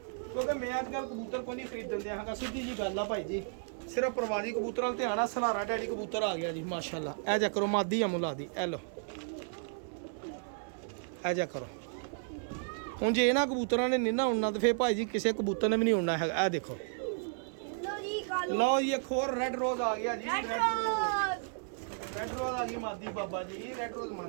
ਕਿਉਂਕਿ ਮੈਂ ਅੱਜ ਕੱਲ੍ਹ ਕਬੂਤਰ ਕੋਈ ਨਹੀਂ ਖਰੀਦਣ ਦਿਆ ਹੈਗਾ ਸਿੱਧੀ ਜੀ ਗੱਲ ਆ ਭਾਈ ਜੀ ਸਿਰਫ ਪ੍ਰਵਾਜੀ ਕਬੂਤਰਾਂ ਨਾਲ ਧਿਆਨ ਆ ਸਲਾਰਾ ਡੈਡੀ ਕਬੂਤਰ ਆ ਗਿਆ ਜੀ ਮਾਸ਼ਾਅੱਲਾ ਇਹ ਜਾ ਕਰੋ ਮਾਦੀ ਆ ਮੁਲਾ ਦੀ ਇਹ ਲੋ ਇਹ ਜਾ ਕਰੋ ਹੁਣ ਜੇ ਇਹਨਾਂ ਕਬੂਤਰਾਂ ਨੇ ਨਹੀਂ ਨਾ ਉੜਨਾ ਤੇ ਫੇਰ ਭਾਈ ਜੀ ਕਿਸੇ ਕਬੂਤਰ ਨੇ ਵੀ ਨਹੀਂ ਉੜਨਾ ਹੈਗਾ ਇਹ ਦੇਖੋ लो जी कालो ਲਓ ਜੀ ਇੱਕ ਹੋਰ ਰੈੱਡ ਰੋਜ਼ ਆ ਗਿਆ ਜੀ रेड रोज ਰੈੱਡ ਰੋਜ਼ ਆ ਗਈ ਮਾਦੀ ਬਾਬਾ ਜੀ ਰੈੱਡ ਰੋਜ਼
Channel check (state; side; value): silent; left; 56 dB below the other